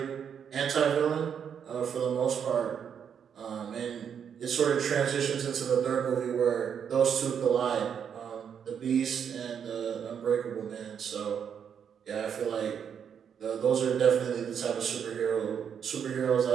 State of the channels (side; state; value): left; quieter; 7.8 dB